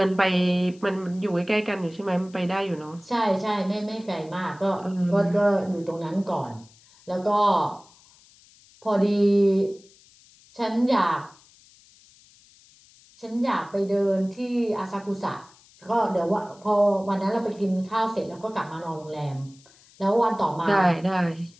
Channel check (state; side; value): noise; left; hiss, 27 dB below the sound